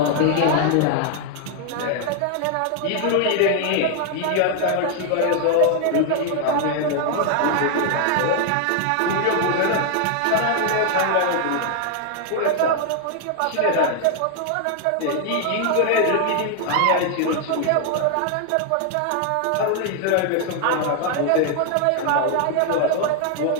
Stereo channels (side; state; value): both; different; correlation 0.00